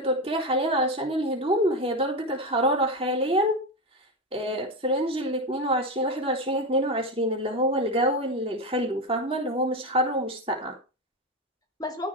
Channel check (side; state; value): both; normal; correlation 0.15